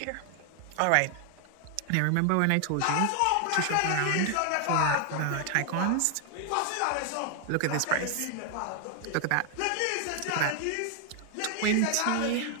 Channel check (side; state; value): both; different; correlation 0.00